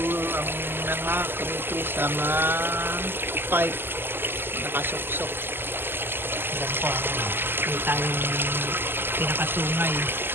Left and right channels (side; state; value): left; late; 0.10 ms